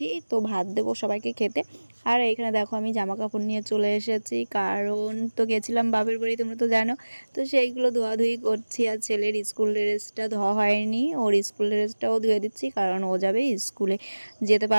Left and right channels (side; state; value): both; inverted; correlation -1.00